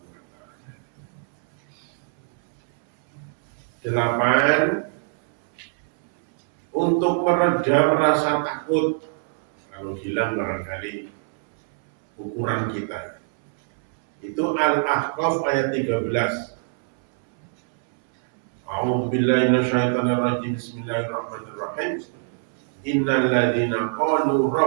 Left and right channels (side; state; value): left; silent; 63 dB below the other